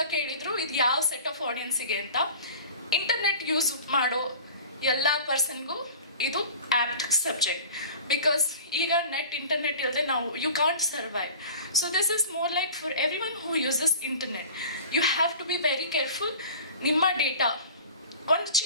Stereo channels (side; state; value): both; inverted; correlation -0.41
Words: ಕೇಳಿದ್ರು ಇದು ಯಾವ ಸೆಟ್ ಆಫ್ ಆಡಿಯನ್ಸಿಗೆ ಅಂತ. ಇಂಟರ್ನೆಟ್ ಯೂಸ್ ಮಾಡೋ ಎಲ್ಲ ಪರ್ಸನ್ಗೂ ಇದು apt subject. Because ಈಗ ಇಂಟರ್ನೆಟ್ ಇಲ್ಲದೆ ನಾವು you can't survive. So this is more like for everyone who uses internet. You have to be very careful. ನಿಮ್ಮ ಡೇಟಾ ಒಂದು